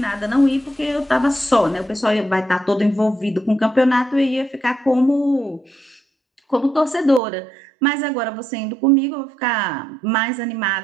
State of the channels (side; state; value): left; drops out; at 7.2 s